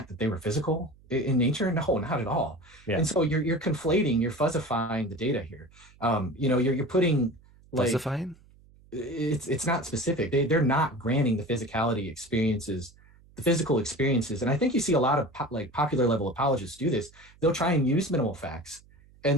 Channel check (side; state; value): right; noise; hum, 27 dB below the sound